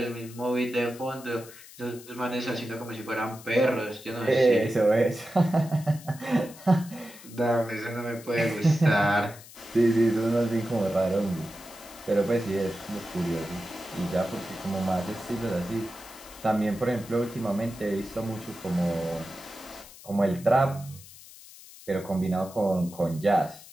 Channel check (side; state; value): left; noise; hiss, 19 dB below the sound